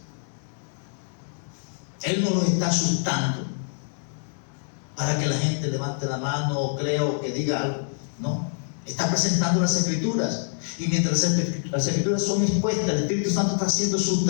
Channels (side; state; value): right; silent; 61 dB below the other